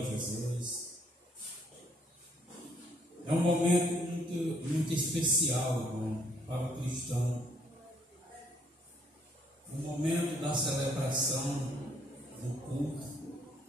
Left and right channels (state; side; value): normal; both; correlation 0.67